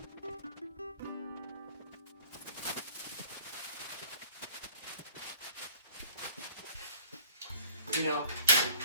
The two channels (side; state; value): both; inverted; correlation -0.49